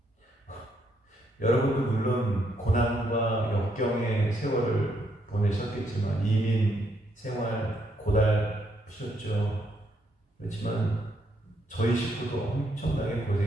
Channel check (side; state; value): both; normal; correlation 0.74